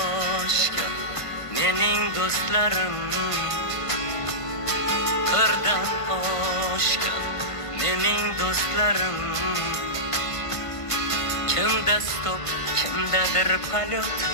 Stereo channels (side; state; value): right; late; 1.5 ms